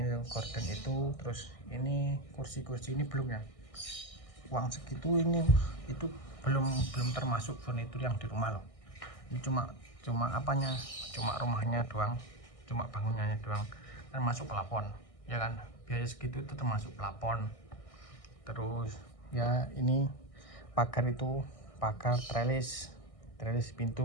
terus ini kursi ini belum ya, uang segitu ini itu belum termasuk furnitur yang di rumah loh. Ini cuma rumahnya doang, cuma bangunannya doang, termasuk plafon ya kan. Biaya segitu itu termasuk plafon. Terus ya ini pagar itu, pagar, trellis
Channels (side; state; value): right; late; 1.6 ms